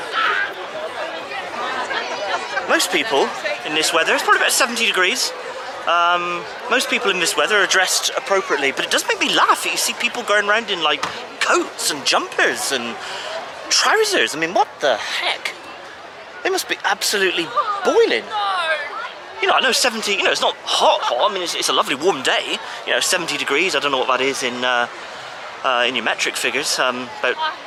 Most people in this weather, it's probably about 70 degrees. Most people in this weather are dressed appropriately, but it does make me laugh that you see people going around in like coats and jumpers and trousers. I mean, what the heck? They must be absolutely boiling. You know, I know 70, you know, it's not hot, I mean, it's a lovely warm day. You know, 70 degrees, I don't know what that is in your metric figures, about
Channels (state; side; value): identical; both; correlation 1.00